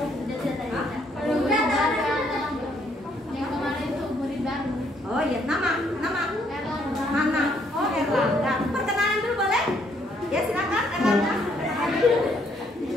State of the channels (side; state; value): both; normal; correlation 0.69